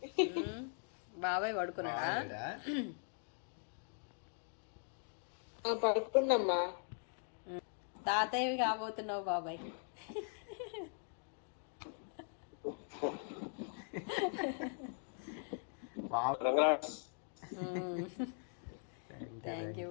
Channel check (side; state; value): right; silent; 51 dB below the other